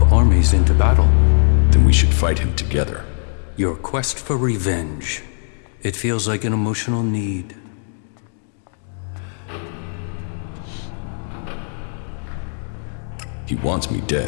armies into battle. Then we should fight him together. Your quest for revenge. It feels like an emotional need. He wants me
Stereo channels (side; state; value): right; silent; digital silence